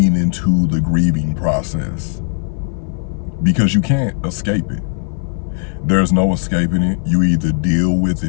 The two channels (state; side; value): silent; right; 57 dB below the other